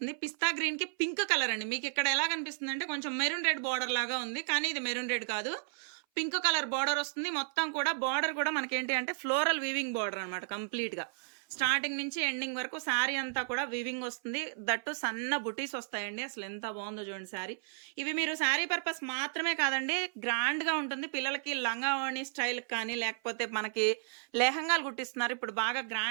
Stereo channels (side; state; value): left; silent; 56 dB below the other